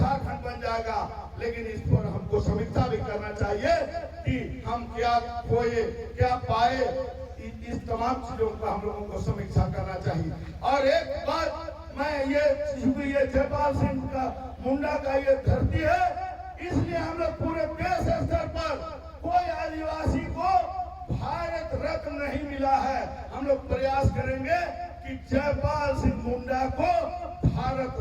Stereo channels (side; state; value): both; identical; correlation 1.00